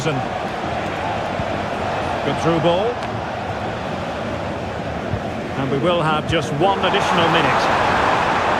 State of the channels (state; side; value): identical; both; correlation 1.00